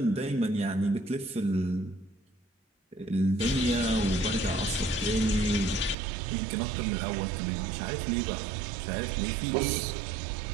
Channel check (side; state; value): left; drops out; at 6.0 s